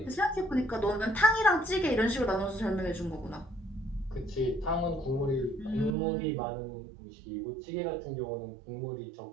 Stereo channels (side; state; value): left; drops out; at 6.0 s